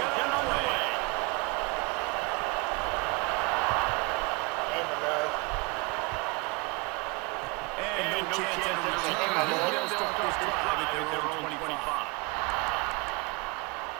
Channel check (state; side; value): quieter; left; 27.6 dB